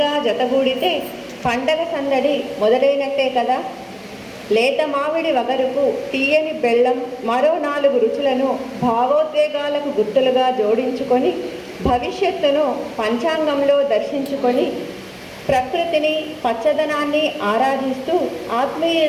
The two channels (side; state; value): both; identical; correlation 1.00